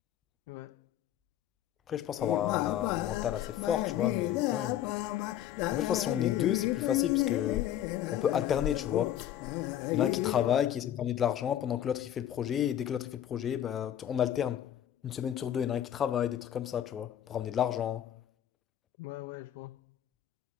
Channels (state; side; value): quieter; right; 11.1 dB